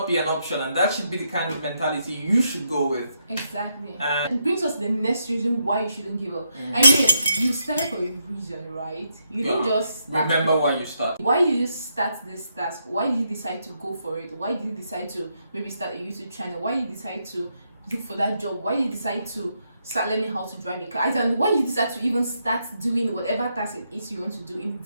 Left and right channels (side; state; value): both; inverted; correlation -0.79